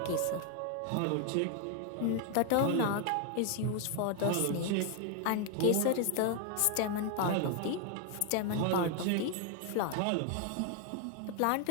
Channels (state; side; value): different; both; correlation 0.00